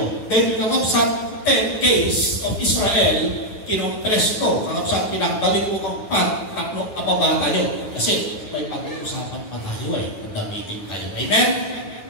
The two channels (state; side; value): late; right; 9.9 ms